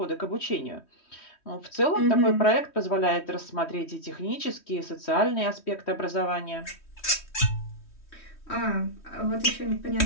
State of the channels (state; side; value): late; right; 3.1 ms